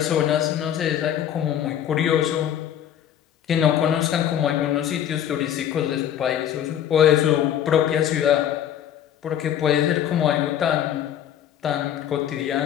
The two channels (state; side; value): quieter; right; 10.2 dB